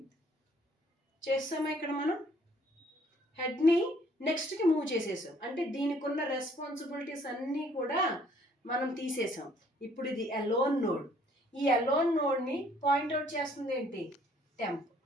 చేస్తామా ఇక్కడ మనం హెడ్ని నెక్స్ట్కి మూవ్ చేసేసాం, అంటే దీనికి ఉన్న రెస్పాన్సిబిలిటీస్ అన్నీ కూడా మనం తీసేసాం. ఇప్పుడు ఇది అలోన్ నోడ్, ఈ అలోన్ నోడ్ని పాయింట్అవుట్ చేస్తుంది ఏంటి, టెంప్.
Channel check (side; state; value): both; normal; correlation 0.62